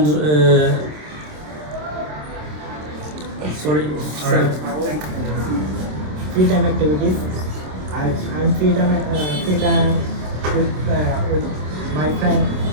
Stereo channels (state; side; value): late; left; 27 ms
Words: sorry. Free time activities. I'm free time with my friend.